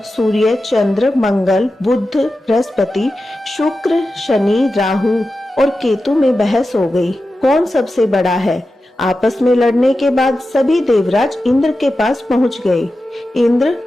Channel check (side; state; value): both; normal; correlation 0.92